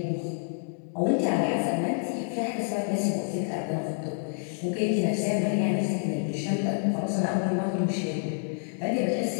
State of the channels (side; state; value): right; silent; digital silence